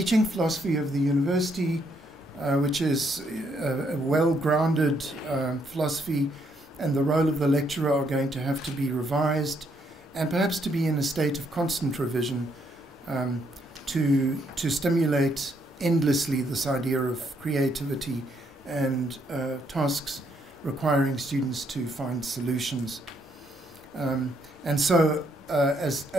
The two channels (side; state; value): both; normal; correlation 0.73